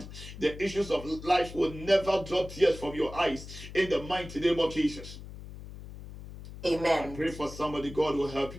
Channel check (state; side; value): noise; left; hum, 13 dB below the sound